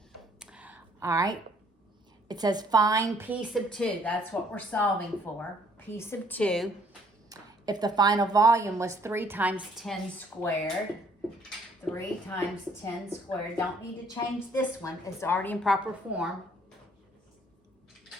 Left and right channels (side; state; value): both; normal; correlation 0.62